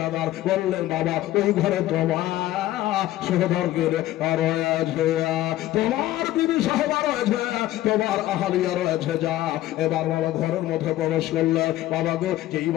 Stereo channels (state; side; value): quieter; right; 14.9 dB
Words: বললেন বাবা ওই ঘরে তোমার সহদরকে আর আছে, তোমার বিবি সাহেবা রয়েছে, তোমার আহালিয়া রয়েছে, যা। এবার বাবা ঘরের মধ্যে প্রবেশ করলে বাবা গো, যেই